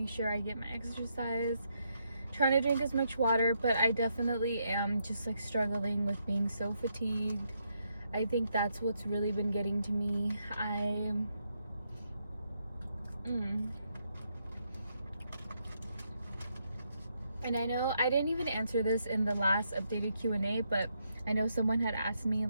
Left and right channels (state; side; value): inverted; both; correlation -0.79